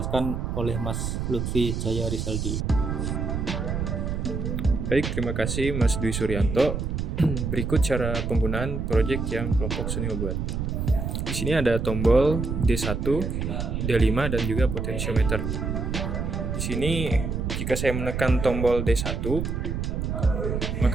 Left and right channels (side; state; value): right; noise; rumble, 2 dB below the sound